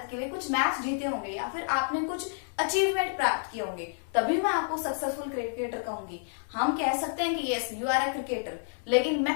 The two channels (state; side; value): silent; right; digital silence